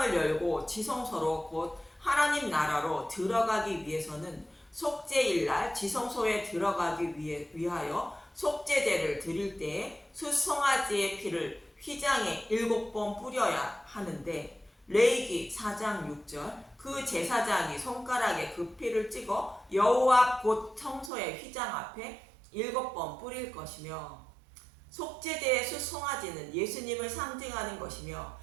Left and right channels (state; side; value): drops out; left; at 21.1 s